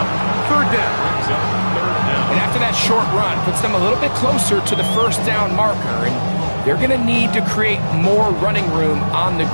3rd down. And after that short run, puts them a little bit closer to the 1st down marker. And they're going to need to create more running room on the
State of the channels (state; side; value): inverted; both; correlation -1.00